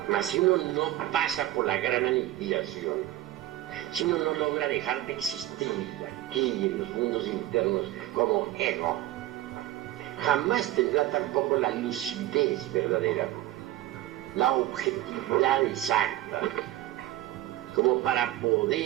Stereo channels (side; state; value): left; quieter; 14.8 dB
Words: Mas si uno no pasa por la gran aniquilación, si uno no logra dejar de existir aquí en los mundos internos como ego, jamás tendrá tampoco la lucidez verdadera, la objetividad exacta, como para